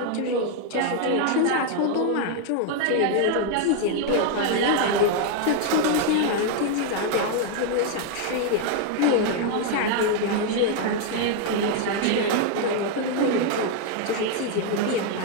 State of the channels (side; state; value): both; different; correlation 0.00